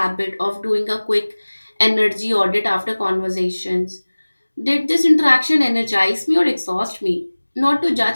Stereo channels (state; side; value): inverted; both; correlation -1.00